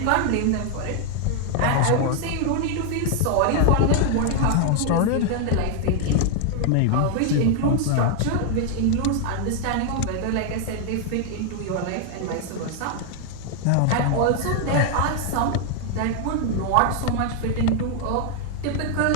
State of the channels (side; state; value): both; different; correlation 0.00